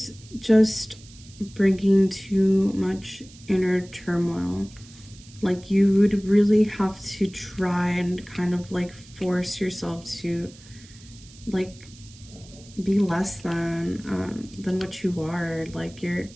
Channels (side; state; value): right; noise; hiss, 22 dB below the sound